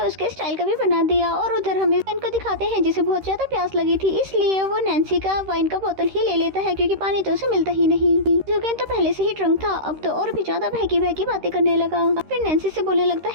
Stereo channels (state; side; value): late; left; 13 ms